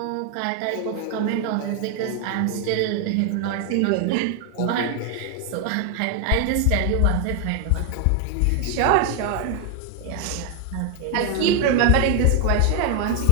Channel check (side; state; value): both; different; correlation 0.00